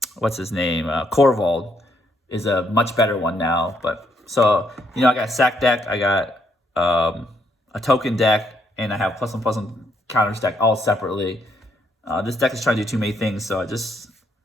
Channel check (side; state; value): both; normal; correlation 0.73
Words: what's his name? Corvald is a much better one now. But so I got a sack deck, I got a token deck, and I have +1/+1 counters deck all separately. This deck is trying to do too many things, so it's